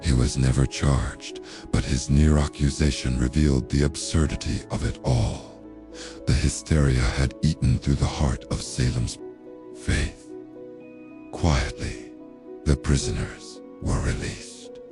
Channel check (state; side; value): identical; both; correlation 1.00